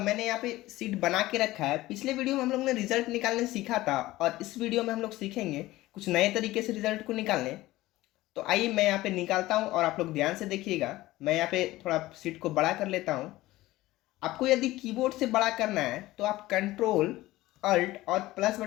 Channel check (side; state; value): right; quieter; 17.5 dB